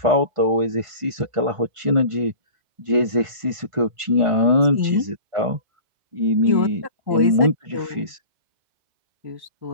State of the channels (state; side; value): late; left; 1.5 ms